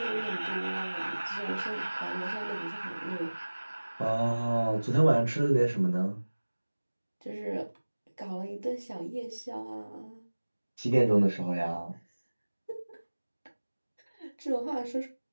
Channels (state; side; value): inverted; both; correlation -1.00